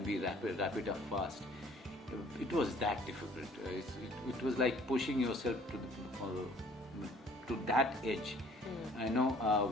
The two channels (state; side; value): normal; both; correlation 0.55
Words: we wrap it up fast? It was that difficult. It was like pushing yourself to that edge.